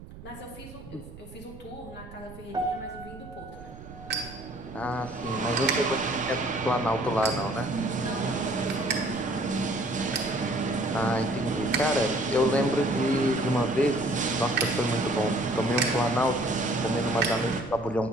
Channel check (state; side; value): noise; right; rumble, 16 dB below the sound